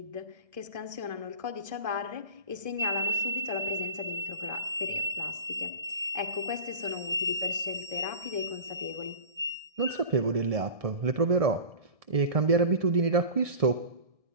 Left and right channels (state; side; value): late; left; 1.7 ms